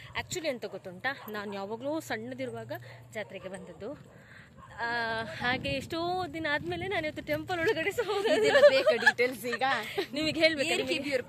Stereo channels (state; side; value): identical; both; correlation 1.00